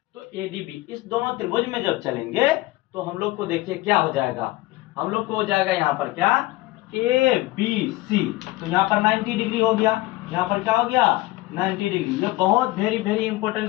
तो ए डी बी इस दोनों त्रिभुज में जब चलेंगे तो हम लोग को देखिए क्या हो जाएगा, हम लोग को हो जाएगा यहाँ पर क्या, ए बी सी, तो यहाँ पर 90 डिग्री हो गया, यहाँ पर क्या हो गया 90 डिग्री। ये बहुत वेरी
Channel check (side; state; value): right; quieter; 18.9 dB